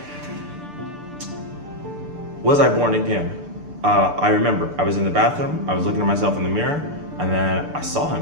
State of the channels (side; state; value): left; late; 6.8 ms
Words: was I born again. I remember I was in the bathroom, I was looking at myself in the mirror, and then I saw